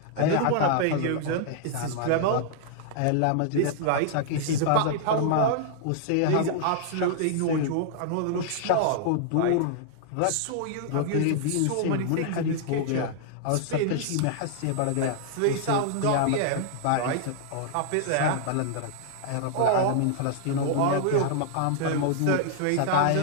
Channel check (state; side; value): different; both; correlation -0.01